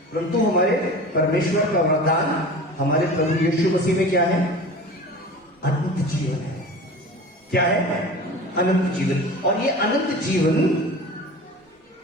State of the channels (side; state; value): both; normal; correlation 0.36